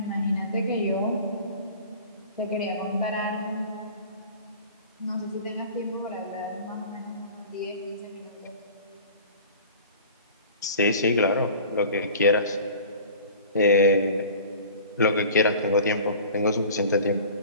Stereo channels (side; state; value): both; inverted; correlation -0.42